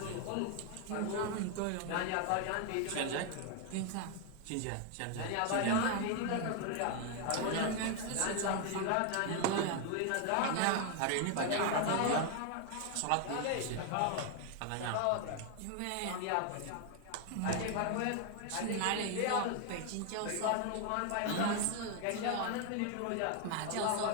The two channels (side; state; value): both; different; correlation 0.00